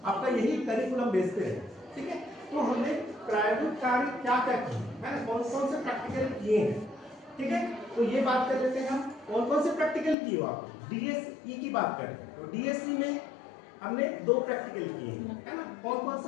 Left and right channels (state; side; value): drops out; right; at 10.2 s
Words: आपका यही करिकुलम बेस पे है। ठीक है, तो हमने प्रायोगिक कार्य क्या क्या किए, है ना, कौन कौन से प्रैक्टिकल किए हैं। ठीक है, तो ये बात कर लेते हैं हम, कौन कौन से प्रैक्टिकल किए हो आप। डीएसई की बात करें तो डीएसई में हमने 2 प्रैक्टिकल किए हैं, है ना। कौन कौन